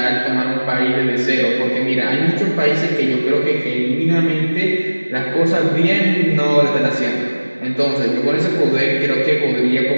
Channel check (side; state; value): both; inverted; correlation -1.00